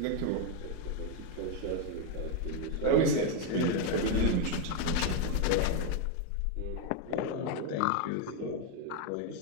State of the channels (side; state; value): both; different; correlation 0.02